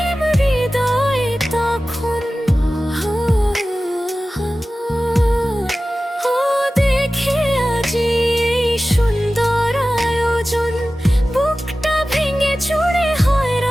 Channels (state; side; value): normal; both; correlation 0.96